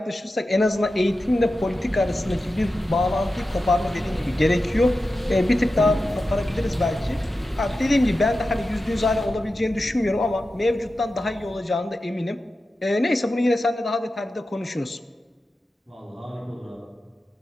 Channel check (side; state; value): both; normal; correlation 0.92